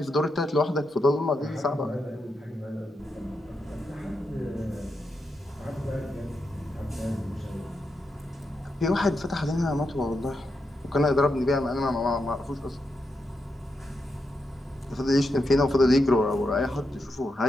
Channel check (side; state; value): both; normal; correlation 0.85